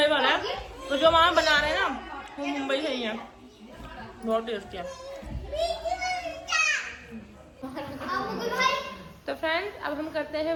वाला है, तो जो मामा बना रहे हैं ना वो मुंबई से ही है। बहुत टेस्टी है। तो फ्रेंड्स अब हम करते हैं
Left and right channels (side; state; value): both; identical; correlation 1.00